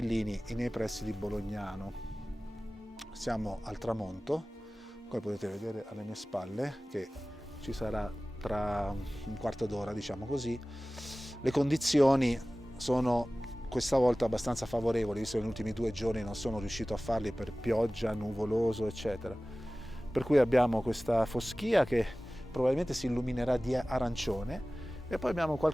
nei pressi di Bolognano. Siamo al tramonto, come potete vedere alle mie spalle, che ci sarà tra un quarto d'ora, diciamo così. Le condizioni sono questa volta abbastanza favorevoli, visto che negli ultimi 2 giorni non sono riuscito a farli per pioggia, nuvoloso, eccetera. Per cui abbiamo questa foschia che probabilmente si illuminerà di arancione e poi abbiamo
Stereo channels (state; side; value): normal; both; correlation 0.98